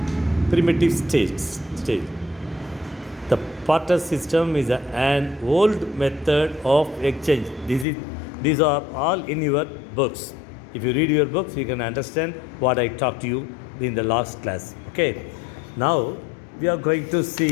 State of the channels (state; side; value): drops out; right; at 7.9 s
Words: primitive state. The barter system is an old method of exchange. These are all in your books. If you read your books, you can understand what I talked to you in the last class. Okay. Now we are going to